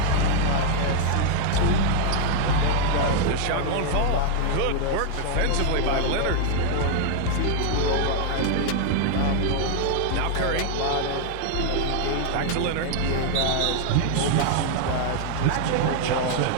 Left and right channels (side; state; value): both; different; correlation 0.00